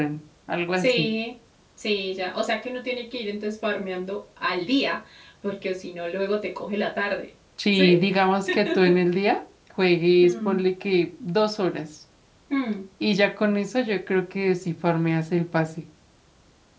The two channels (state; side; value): identical; both; correlation 1.00